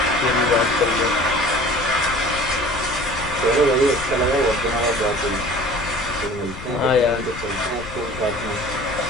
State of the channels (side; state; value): left; noise; rumble, 14 dB below the sound